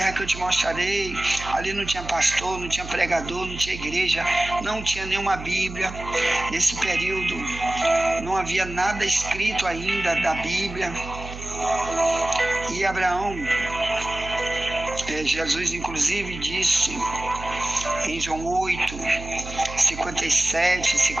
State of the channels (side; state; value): right; noise; hum, 11 dB below the sound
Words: que eu te mostrarei. Ali não tinha pastor, não tinha pregador, não tinha igreja, não tinha nenhuma Bíblia. Nesse período não havia nada escrito ainda da Bíblia. E Abraão, Jesus inclusive disse em João 8, 57,